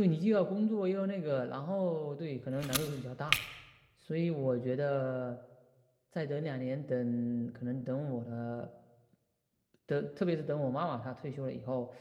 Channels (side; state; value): both; identical; correlation 1.00